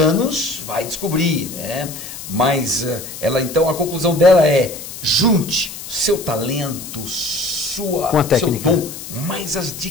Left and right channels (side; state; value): left; noise; hiss, 11 dB below the sound